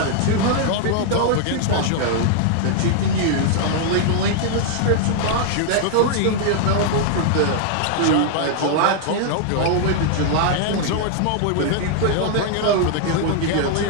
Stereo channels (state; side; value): different; both; correlation 0.00